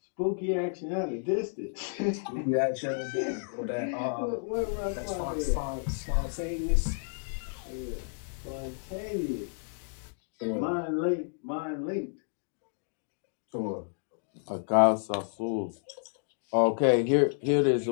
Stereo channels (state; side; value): silent; right; digital silence